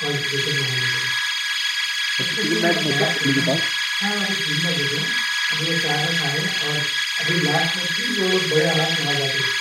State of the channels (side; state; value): both; identical; correlation 1.00